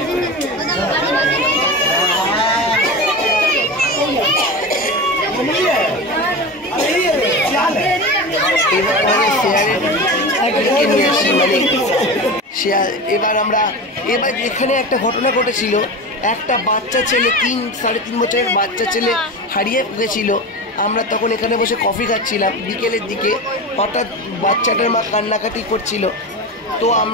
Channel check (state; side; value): normal; both; correlation 0.26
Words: এবার আমরা এখানে একটা ঘটনা ঘটেছিল, একটা বাচ্চা ছেলে 3-3.5 বছরের বাচ্চা ছেলে হারিয়ে গেছিল। আমরা তখন এখানে বসে কফি খাচ্ছিলাম বিকেলের দিকে, হঠাৎ বাচ্চাটার মা কান্নাকাটি করছিল। তো